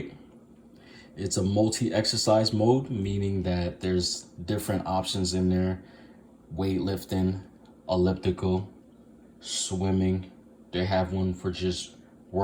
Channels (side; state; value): both; identical; correlation 1.00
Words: It's a multi-exercise mode, meaning that there's different options in there. Weightlifting, elliptical, swimming. They have one for just